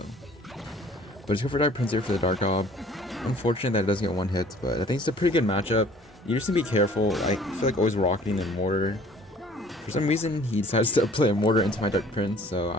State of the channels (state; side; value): normal; both; correlation 0.53